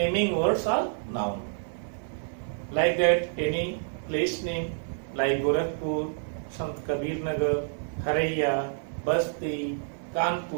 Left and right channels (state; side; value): silent; left; 58 dB below the other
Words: words are noun. Like that, any place name like Gorakhpur, Sant Kabir Nagar, Haraiya, Basti,